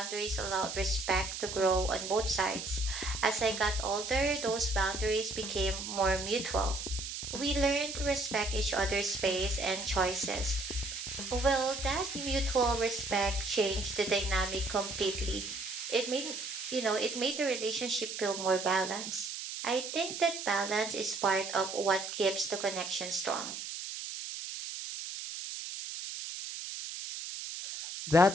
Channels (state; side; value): noise; right; hiss, 7 dB below the sound